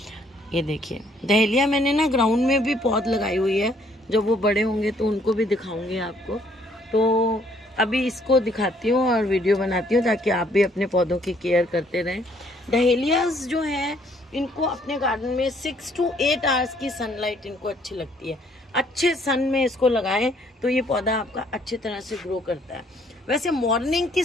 ये देखिए, डहेलिया मैंने ना ग्राउंड में भी पौध लगाई हुई है। जब वो बड़े होंगे तो उनको भी दिखाऊंगी आपको। तो अभी इसको दिखाती हूँ और वीडियो बनाती हूँ ताकि आप भी अपने पौधों की केयर करते रहें। डहेलियाज जो हैं, इनको अपने गार्डन में 6 to 8 आवर्स की सनलाइट इनको अच्छी लगती है। अच्छे सन में इसको लगाएं तो ये पौधा आपका अच्छी तरह से ग्रो करता है। वैसे मॉर्निंग की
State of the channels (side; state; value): both; normal; correlation 0.65